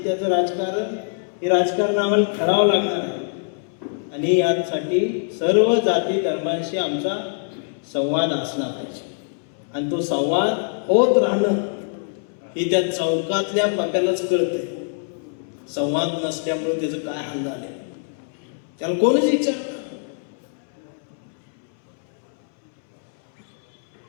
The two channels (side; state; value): right; silent; 63 dB below the other